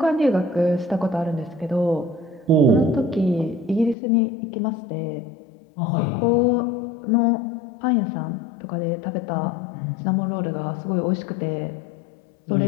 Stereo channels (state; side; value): drops out; right; at 4.0 s